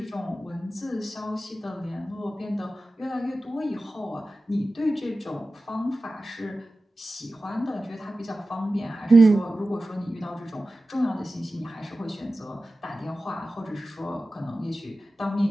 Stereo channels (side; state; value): both; normal; correlation 0.95